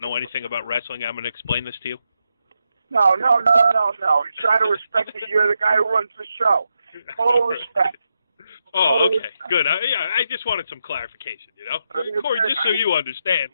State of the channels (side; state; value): both; inverted; correlation -0.84